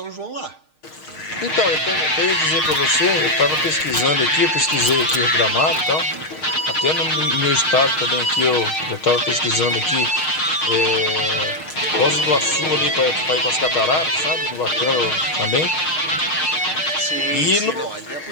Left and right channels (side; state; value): right; late; 6.4 ms